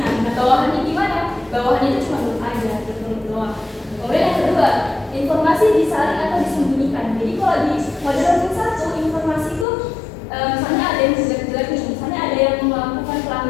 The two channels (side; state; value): right; drops out; at 9.7 s